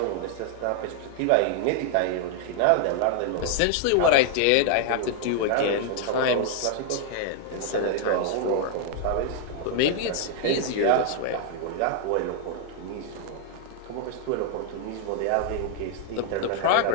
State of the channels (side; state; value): both; different; correlation 0.00